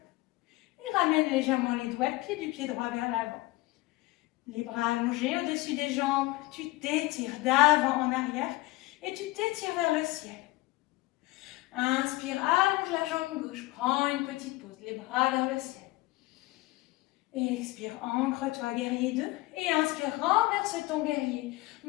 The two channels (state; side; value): quieter; right; 20.3 dB